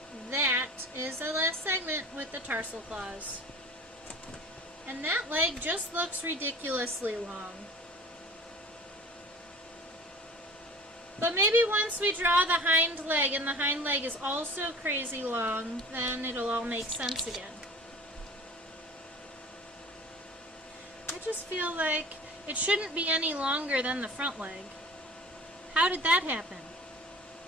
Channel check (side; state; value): both; normal; correlation 0.42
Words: That is the last segment with the tarsal claws. And that leg just looks ridiculously long. But maybe once we draw the hind leg, and the hind leg is also crazy long, then it'll all make sense again. I just feel like it shouldn't be any longer than the front leg. How did that happen?